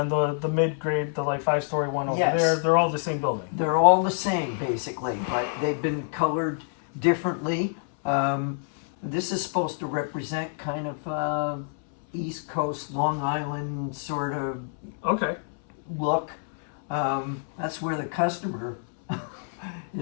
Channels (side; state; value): right; silent; 60 dB below the other